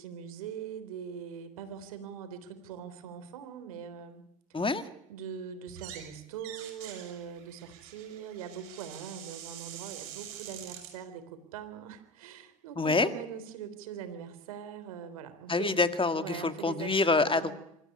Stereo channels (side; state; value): both; normal; correlation 0.29